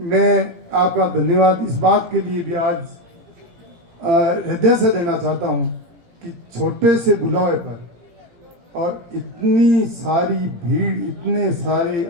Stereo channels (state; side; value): late; left; 17 ms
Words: मैं आपका धन्यवाद इस बात के लिए भी आज हृदय से देना चाहता हूं कि छोटे से बुलावे पर और इतनी सारी भीड़, इतने सारे